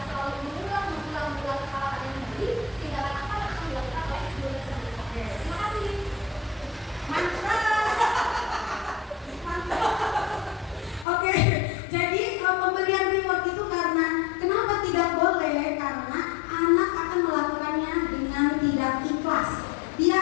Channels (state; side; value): drops out; right; at 11.1 s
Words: selalu mengulang kesalahan yang tadi, tindakan apa yang akan dilakukan oleh guru tersebut? Terima kasih. Oke, jadi pemberian reward itu karena kenapa tidak boleh? Karena anak akan melakukannya dengan tidak ikhlas. Dia